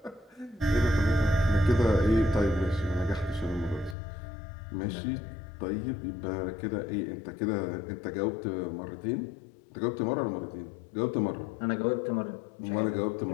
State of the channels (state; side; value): drops out; right; at 4.0 s